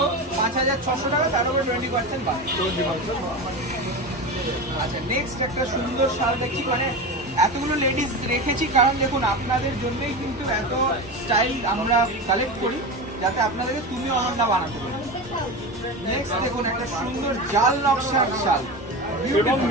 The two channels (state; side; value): normal; both; correlation 0.24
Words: 5600 টাকা, তার উপরে 20% বাদ। আচ্ছা, নেক্সট একটা সুন্দর শাল দেখছি, মানে এতগুলো লেডিস রেখেছি কারণ দেখুন আপনাদের জন্যই কিন্তু এত স্টাইল আমরা কালেক্ট করি, যাতে আপনাদেরকে তুমি অনন্যা বানাতে পারি। নেক্সট দেখুন একটা সুন্দর জাল নকশার শাল, এবং